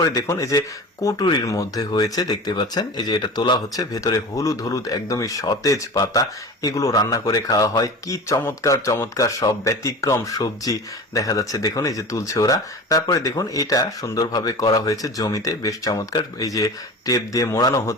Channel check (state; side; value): normal; both; correlation 0.34